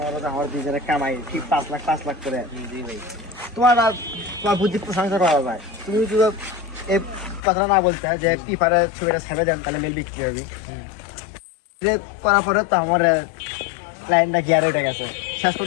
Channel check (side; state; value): right; drops out; at 7.4 s